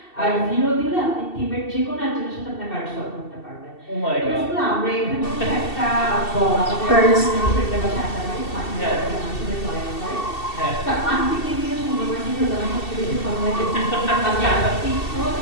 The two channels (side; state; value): right; late; 2.7 ms